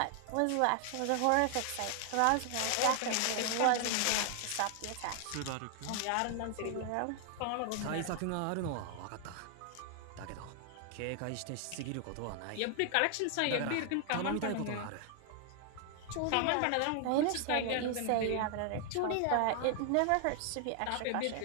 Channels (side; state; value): both; different; correlation 0.00